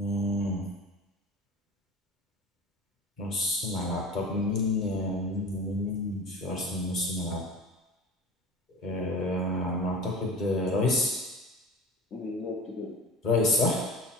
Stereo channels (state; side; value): normal; both; correlation 0.36